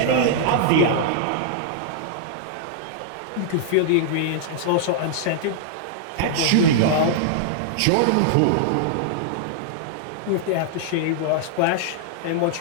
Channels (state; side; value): different; both; correlation -0.01